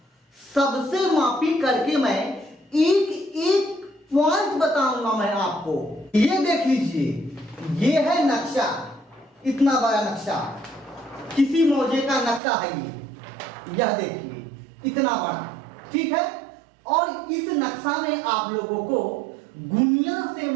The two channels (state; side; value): drops out; left; at 12.4 s